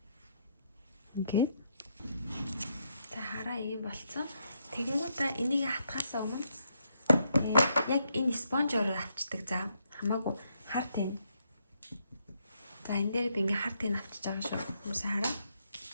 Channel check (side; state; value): both; inverted; correlation -0.77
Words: Ингээд. За хараа ийм болцсон. Тэгэнгүүтээ энийг хатгахаас өмнө яг энэ спонжоор авчдаг. За хамаагүй хар тань. За энэ дээр би ингээ хар тань авчиж байгаа шүү. Хүмүүсээ хараа.